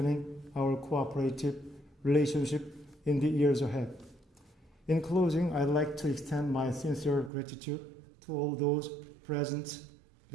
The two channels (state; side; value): drops out; left; at 7.3 s